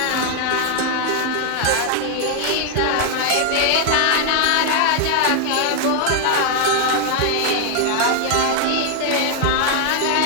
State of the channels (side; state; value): both; different; correlation 0.00